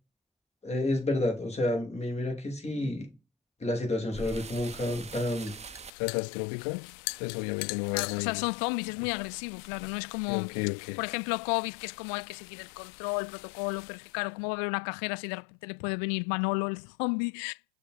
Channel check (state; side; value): drops out; right; at 5.9 s